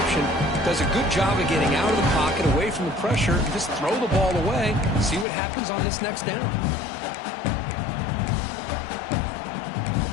Does a good job of getting out of the pocket, away from the pressure, and just throw the ball away. See what happens on this next down.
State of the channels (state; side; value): drops out; right; at 5.2 s